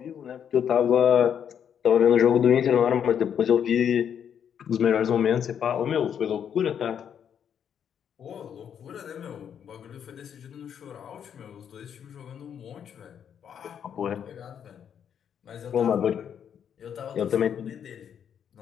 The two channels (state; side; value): quieter; right; 8.4 dB